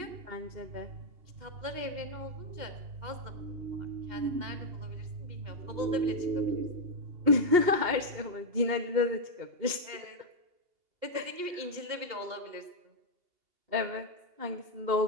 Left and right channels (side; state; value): left; late; 2.8 ms